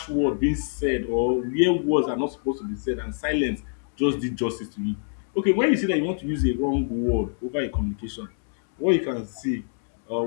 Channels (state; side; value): silent; right; digital silence